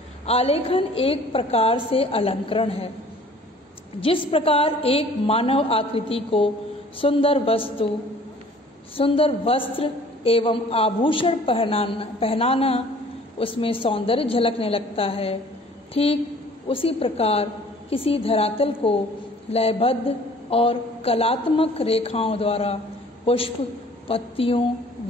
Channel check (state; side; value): normal; both; correlation 0.52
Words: आलेखन एक प्रकार से अलंकरण है। जिस प्रकार एक मानव आकृति को सुंदर वस्त्र एवं आभूषण पहनाना उसमें सौंदर्य झलकने लगता है, ठीक उसी प्रकार किसी धरातल को लयबद्ध और कलात्मक रेखाओं द्वारा पुष्प, पत्तियों